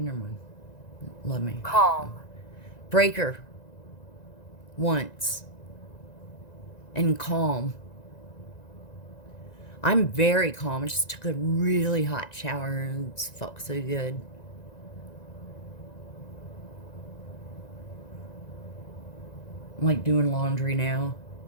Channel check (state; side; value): late; right; 1.9 ms